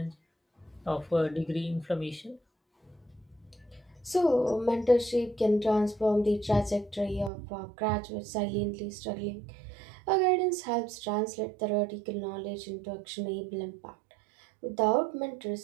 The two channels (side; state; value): left; drops out; at 7.3 s